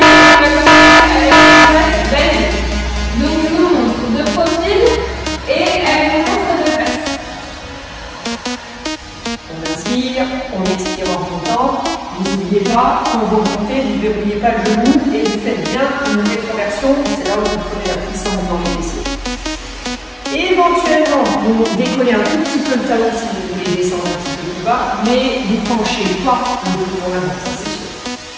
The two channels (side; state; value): both; identical; correlation 1.00